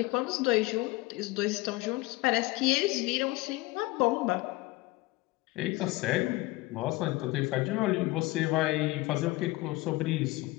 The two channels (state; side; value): quieter; right; 20.3 dB